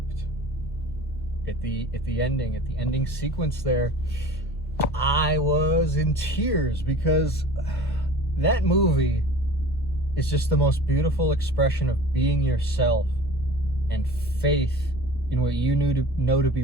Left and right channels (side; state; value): both; normal; correlation 0.41